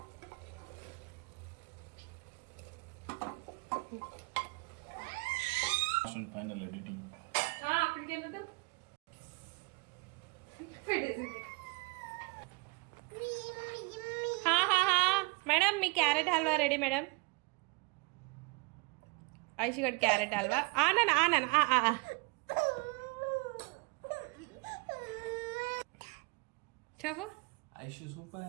Final editing. అక్కడికి వెళ్ళదు పెట్టేసింది. మేడం మీ క్యారెట్ హల్వా రెడీ మేడం. ఐషిగడ్ క్యారెట్ హల్వా ఆనన్ ఆనన్ చెప్పు. ఐషు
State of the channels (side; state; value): left; quieter; 29.3 dB